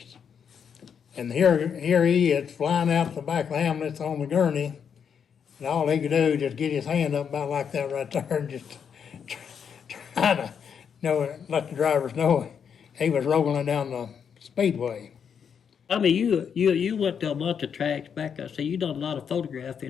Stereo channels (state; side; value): quieter; right; 7.3 dB